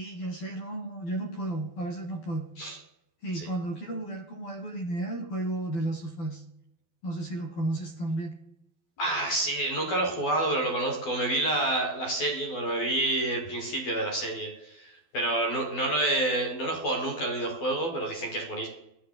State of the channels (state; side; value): late; right; 12 ms